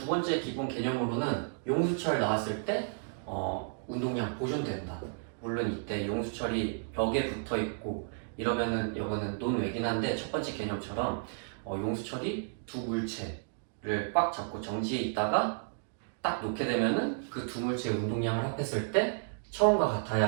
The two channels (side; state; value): left; silent; digital silence